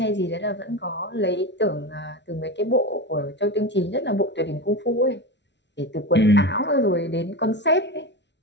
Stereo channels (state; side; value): late; right; 0.51 ms